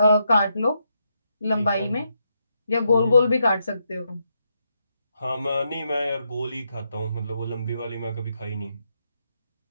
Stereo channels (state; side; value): inverted; both; correlation -0.81